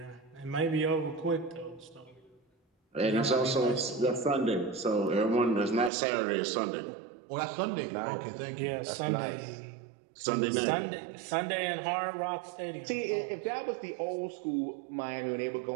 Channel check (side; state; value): left; drops out; at 5.9 s